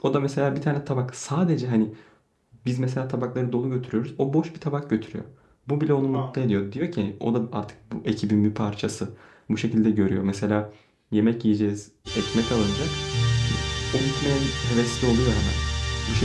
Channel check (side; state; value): both; identical; correlation 1.00